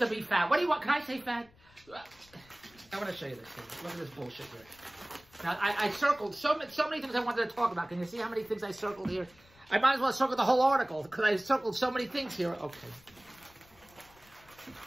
be fat. What do you want? Can I say fat? I want to show you this thing. Look at this bullshit here. Now, I circled so many things I wanted to talk about. Can you see how many things I circled here? I might as well circle the whole article because I circled so many things here. Okay.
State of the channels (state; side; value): noise; left; rumble, 27 dB below the sound